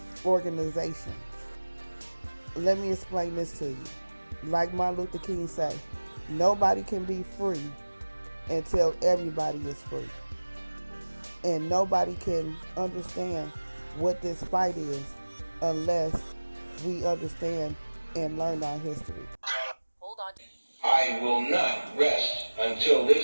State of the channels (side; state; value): both; inverted; correlation -1.00